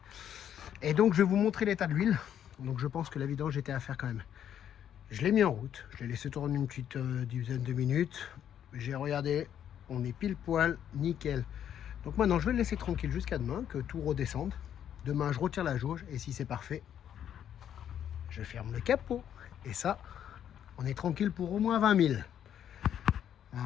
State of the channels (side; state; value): right; quieter; 9.7 dB